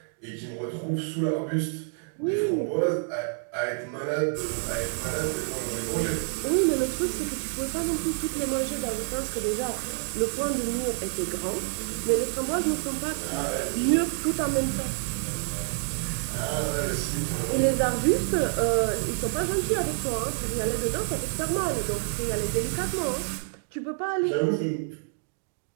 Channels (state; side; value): silent; left; digital silence